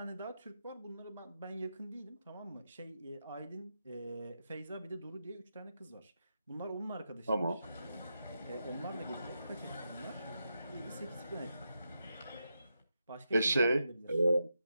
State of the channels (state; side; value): inverted; both; correlation -0.86